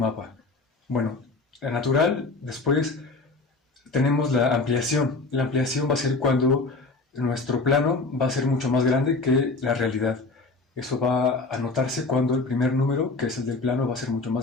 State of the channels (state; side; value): quieter; right; 3.6 dB